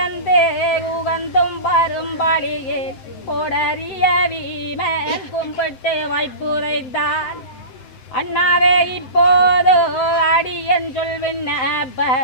உகந்தும் பரும்படியே கொடறிய வீமன் கும்பிட்டு வைப்புரைத்தான் அண்ணாவே இப்போது அடியன்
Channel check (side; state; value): right; late; 7.8 ms